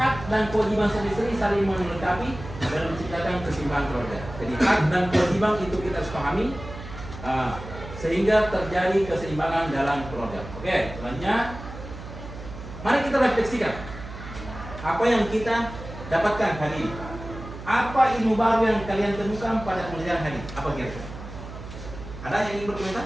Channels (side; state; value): right; noise; hum, 12 dB below the sound